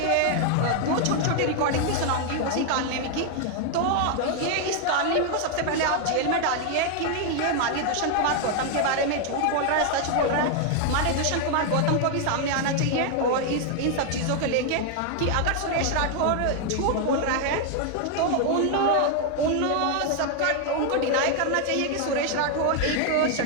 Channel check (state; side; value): different; both; correlation 0.00